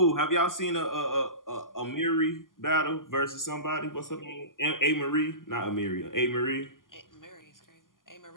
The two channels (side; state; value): right; late; 0.90 ms